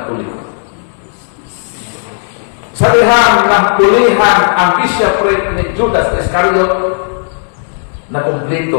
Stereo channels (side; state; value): right; silent; digital silence